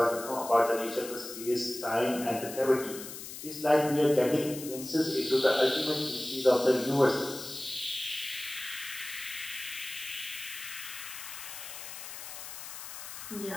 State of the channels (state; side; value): noise; left; hiss, 10 dB below the sound